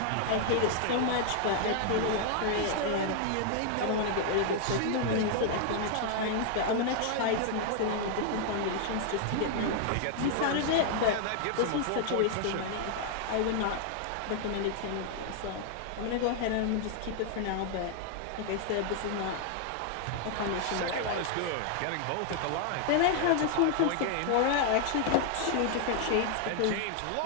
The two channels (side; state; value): both; different; correlation 0.00